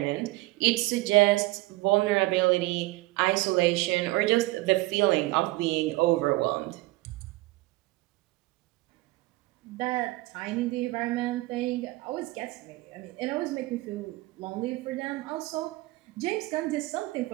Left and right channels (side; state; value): left; quieter; 20.5 dB